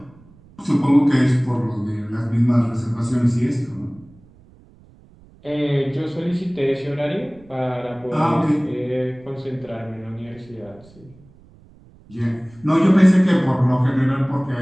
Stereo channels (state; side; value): noise; right; rumble, 26 dB below the sound